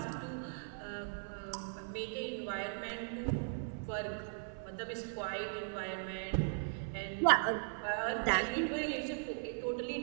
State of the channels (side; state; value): left; silent; 52 dB below the other